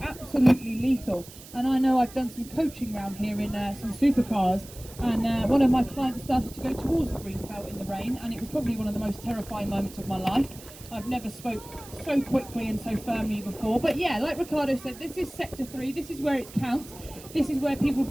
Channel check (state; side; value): noise; right; hiss, 18 dB below the sound